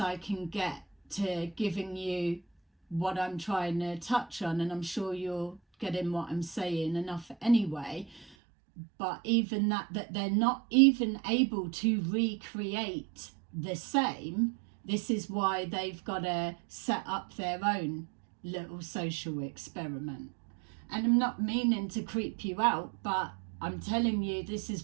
can get to giving you what I'm trying to touch on, and I'm sure you're getting what I'm saying enough anyway. But even that they're not even able to recreate the same. This is why they've got to set up their own little social experiment. And I'm not meaning to creep you out, but I'm telling you, this is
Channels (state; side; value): drops out; left; at 8.2 s